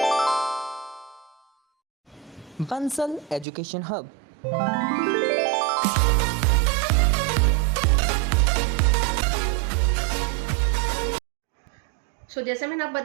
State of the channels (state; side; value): drops out; left; at 3.5 s